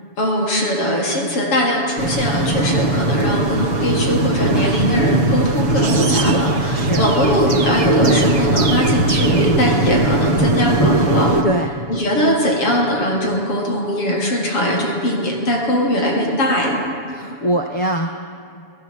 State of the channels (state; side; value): late; right; 7.0 ms